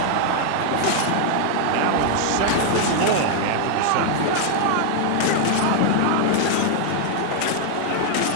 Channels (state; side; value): different; both; correlation 0.00